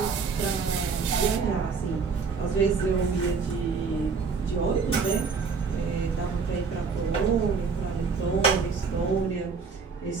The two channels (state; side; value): quieter; left; 5.3 dB